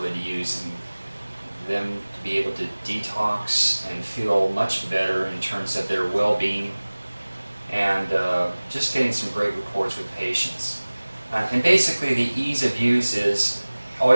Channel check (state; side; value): inverted; both; correlation -1.00